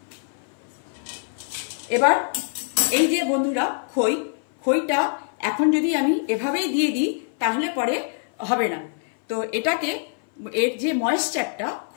এবার এই যে বন্ধুরা খইটা এখন যদি আমি এভাবেই দিয়ে দিই তাহলে পরে হবে না। তো এটাকে এর যে ময়েশ্চারটা,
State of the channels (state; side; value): silent; right; 58 dB below the other